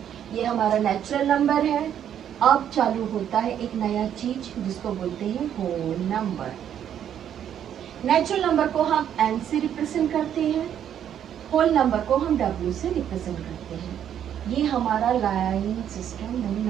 ये हमारा नेचुरल नंबर है। अब चालू होता है एक नया चीज जिसको बोलते हैं होल नंबर। नेचुरल नंबर को हम n से रिप्रेजेंट करते हैं, होल नंबर को हम w से रिप्रेजेंट करते हैं। ये हमारा लाइन सिस्टम। नहीं,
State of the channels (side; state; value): left; quieter; 9.7 dB